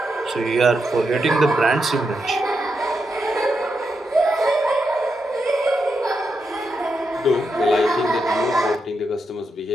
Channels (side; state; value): both; normal; correlation 0.84